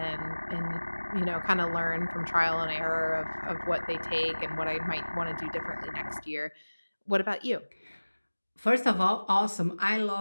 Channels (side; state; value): both; inverted; correlation -1.00